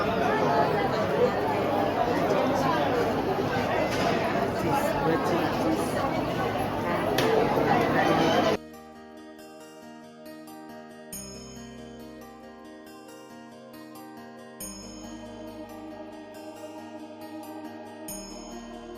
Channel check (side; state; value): both; identical; correlation 1.00